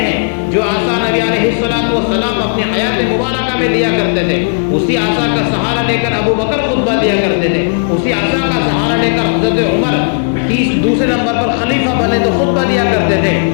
جو عصا نبی علیہ السلام اپنی حیات مبارکہ میں لیا کرتے تھے. اسی عصا کا سہارا لے کر ابو بکر خطبہ دیا کرتے تھے. اسی عصا کا سہارا لے کر حضرت عمر دوسرے نمبر پر خلیفہ بنے تو خطبہ دیا کرتے تھے.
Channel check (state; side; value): silent; right; digital silence